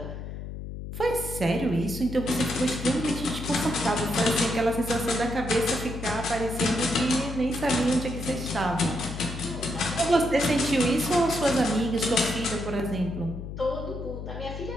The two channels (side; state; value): left; noise; hum, 8 dB below the sound